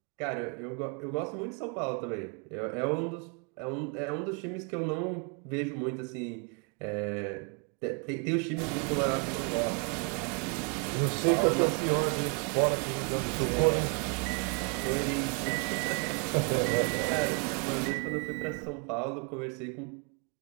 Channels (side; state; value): left; quieter; 35.2 dB